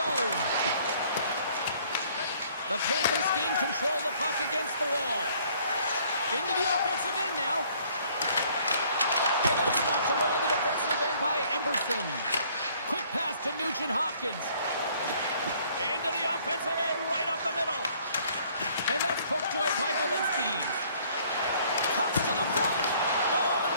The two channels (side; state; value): both; inverted; correlation -0.60